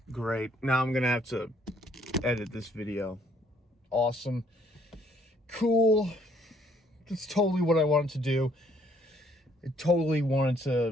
Great. Now I'm gonna have to edit this video. Awesome. Cool. That's totally what I wanted to do. I totally wanted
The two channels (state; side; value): normal; both; correlation 0.65